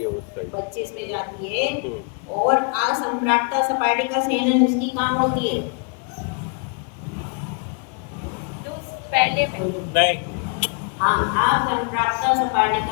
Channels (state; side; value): quieter; right; 35.9 dB